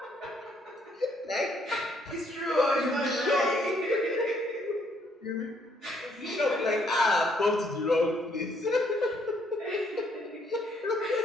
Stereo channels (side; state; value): both; normal; correlation 0.69